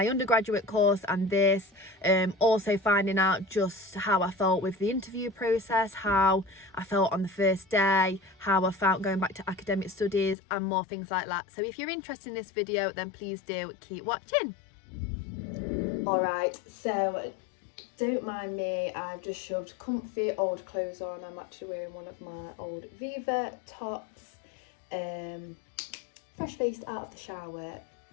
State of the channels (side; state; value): right; drops out; at 10.4 s